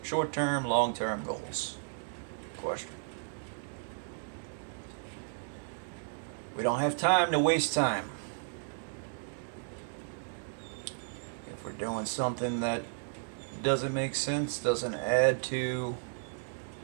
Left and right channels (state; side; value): silent; left; digital silence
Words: short-term, long-term goals? Question. We don't have time to waste time. If we're doing something that doesn't make sense, doesn't add to